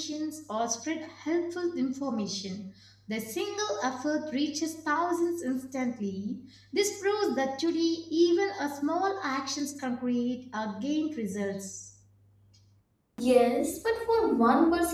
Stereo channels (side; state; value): both; identical; correlation 1.00